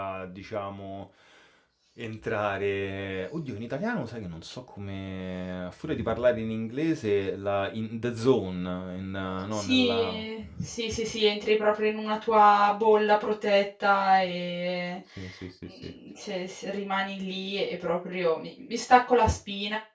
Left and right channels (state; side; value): identical; both; correlation 1.00